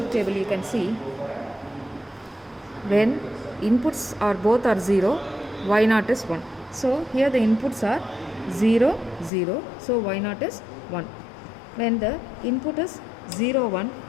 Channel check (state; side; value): drops out; right; at 9.3 s